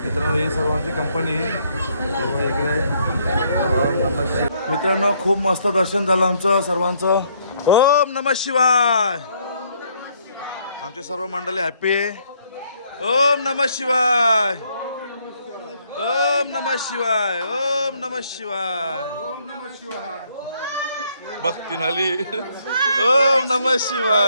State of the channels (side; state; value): both; inverted; correlation -0.69